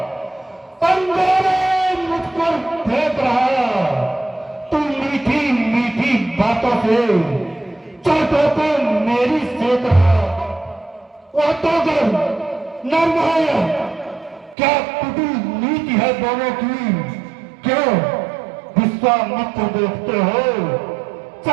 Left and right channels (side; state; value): left; drops out; at 14.6 s